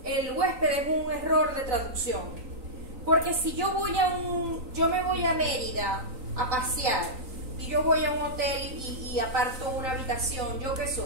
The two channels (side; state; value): left; late; 3.9 ms